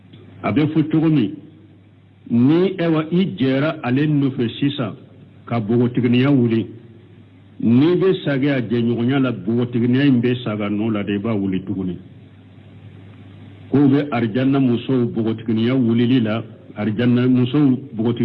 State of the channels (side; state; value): both; identical; correlation 1.00